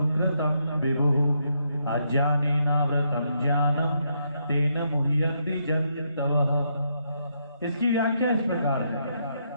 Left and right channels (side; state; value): both; inverted; correlation -0.77